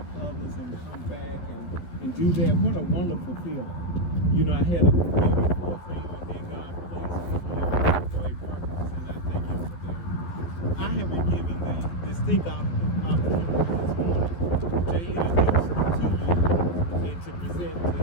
others and come back and do that. What a wonderful feeling. You know, I had a very full thing, and then God placed me here for a purpose, and I thank Him for that. I have been given the distinct opportunity this morning to introduce to you and to present to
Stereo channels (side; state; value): right; late; 12 ms